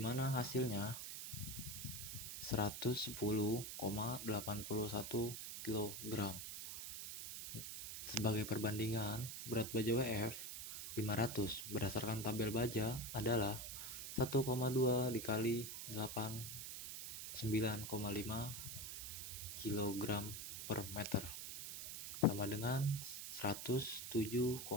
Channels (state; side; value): noise; right; hiss, 6 dB below the sound